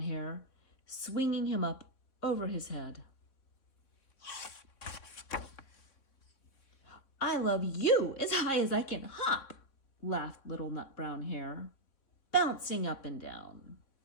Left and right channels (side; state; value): right; late; 3.6 ms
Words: swinging him up over his head. "I love you as high as I can hop," laughed Little Nut Brown Hare, bouncing up and down.